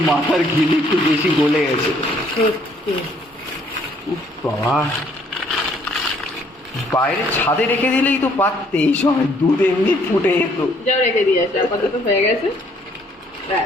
মাথার ঘিলি একটু বেশি গলে গেছে। সত্যি। উফ বাবা, বাইরে ছাদে রেখে দিলেই তো পারতে, এই সময় দুধ এমনি ফুটে যেত। যাও রেখে দিয়ে আসো, আপাতত হয়ে গেছে।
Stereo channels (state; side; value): normal; both; correlation 0.64